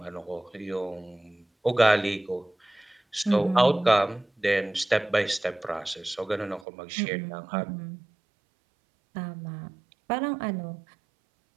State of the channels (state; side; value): drops out; left; at 6.7 s